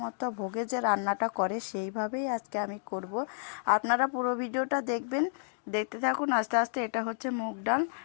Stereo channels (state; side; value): silent; right; digital silence